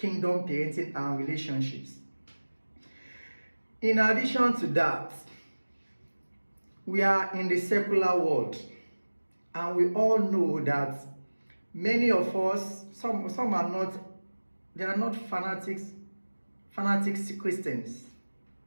parenting and relationships. In addition to that, we are in the secular world, and we all know that many of us, some are not, they are not fanatics Christians.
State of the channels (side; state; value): both; inverted; correlation -1.00